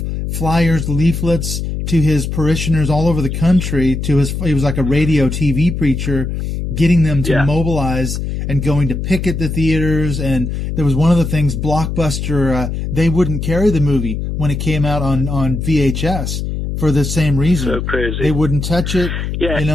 flyers, leaflets to his parishioners all over the country. He was like a radio TV preacher, getting them to mobilize. and going to picket the theaters. And there was one of the things, Blockbuster, they wouldn't carry the movie when it came out on VHS for the same reason. So crazy. They wouldn't touch it. Yeah. You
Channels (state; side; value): noise; left; hum, 3 dB below the sound